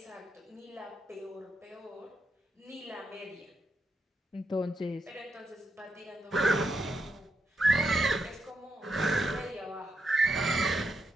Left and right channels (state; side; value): normal; both; correlation 0.82